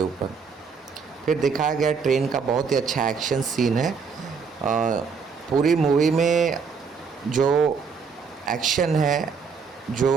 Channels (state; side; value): quieter; left; 5.7 dB